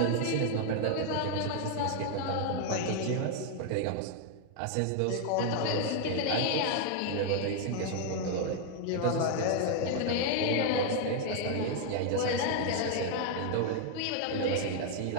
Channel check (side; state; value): both; different; correlation 0.00